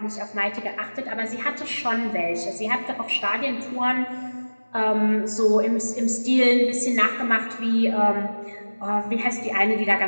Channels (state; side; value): inverted; both; correlation -1.00